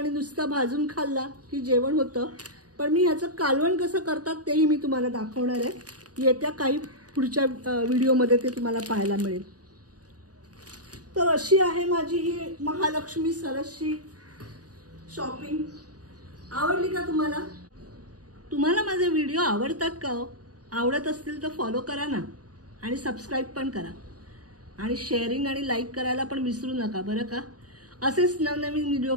नुसता भाजून खाल्ला की जेवण होतं, पण मी ह्याचं कालवण कसं करतात तेही मी तुम्हाला दाखवणार आहे. येत्या काही पुढच्या व्हिडिओमध्ये ते तुम्हाला पाहायला मिळेल. तर अशी आहे माझी ही महालक्ष्मी सरसची शॉपिंग. आवडली का तुम्हाला? तुम्हाला माझे व्हिडिओ आवडतात का हो? आवडत असतील तर फॉलो करा ना आणि सबस्क्राईब पण करा आणि शेअरिंग आणि लाईक करायला पण विसरू नका बरं का. असेच नवनवीन व्हिडिओ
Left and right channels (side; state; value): left; late; 0.68 ms